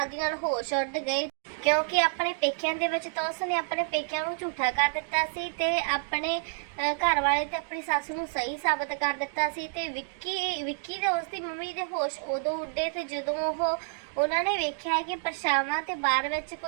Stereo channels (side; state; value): left; silent; digital silence